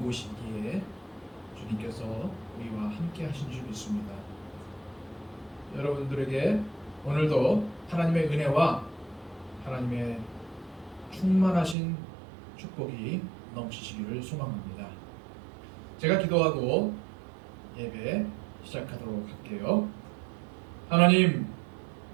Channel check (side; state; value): left; drops out; at 11.8 s